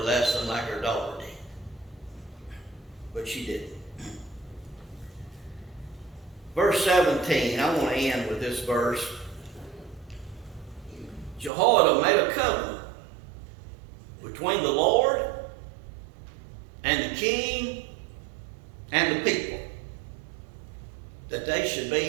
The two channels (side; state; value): left; drops out; at 11.5 s